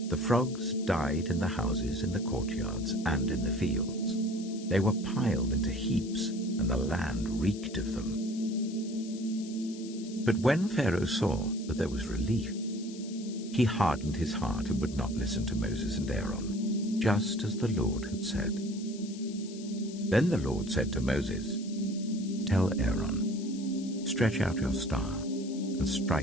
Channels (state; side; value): noise; left; hiss, 17 dB below the sound